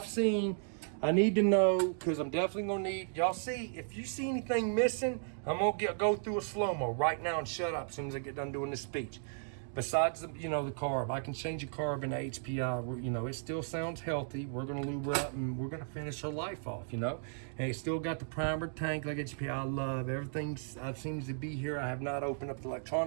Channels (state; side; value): silent; left; digital silence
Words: need to know, because I'm definitely gonna need, y'all see, if you see anything missing, I'm gonna go through a slow-mo right now and shut up as soon as I get done doing this speech. Besides the, the carb, I can change a carb in HPI, it still sounds healthy. We're gonna lube her up and we're gonna finish her life off, And it's still got the primer tank like HPI. I love everything seems to be here. I have not opened up the